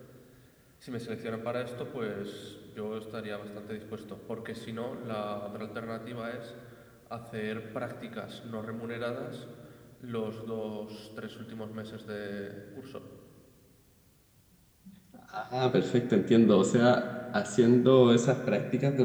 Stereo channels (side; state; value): both; identical; correlation 1.00